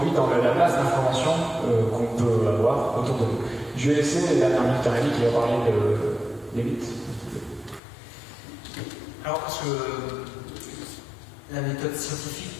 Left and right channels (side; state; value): right; drops out; at 7.8 s